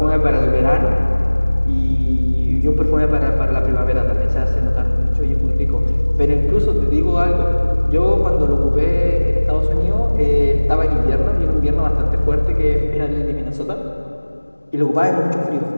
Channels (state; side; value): inverted; both; correlation -1.00